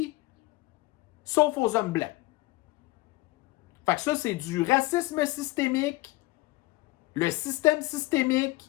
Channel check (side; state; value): right; quieter; 19.9 dB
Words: sauf aux hommes blancs. Fait que ça, c'est du racisme systémique, le système